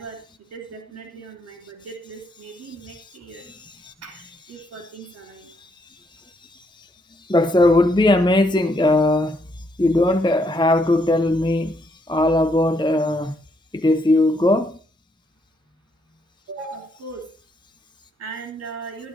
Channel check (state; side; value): normal; both; correlation 0.74